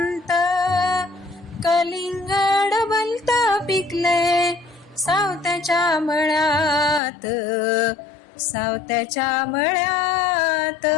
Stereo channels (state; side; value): drops out; right; at 7.0 s